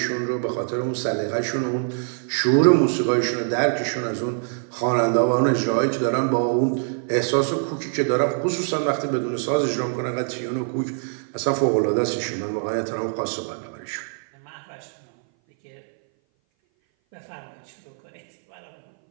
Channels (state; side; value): silent; left; 58 dB below the other